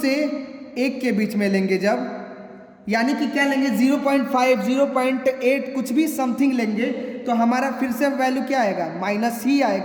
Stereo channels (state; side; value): identical; both; correlation 1.00